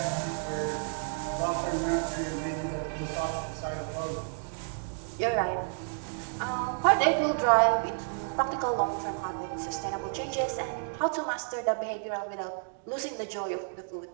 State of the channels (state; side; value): silent; left; 57 dB below the other